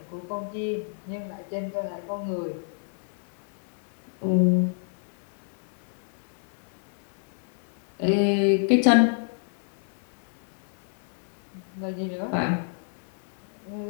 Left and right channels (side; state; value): right; silent; digital silence